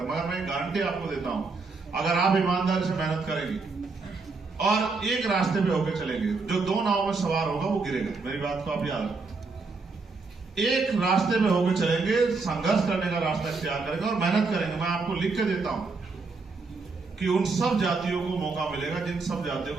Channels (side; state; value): left; quieter; 4.2 dB